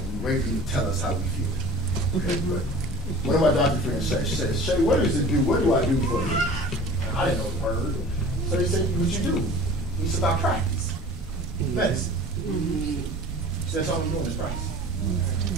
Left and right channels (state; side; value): normal; both; correlation 0.42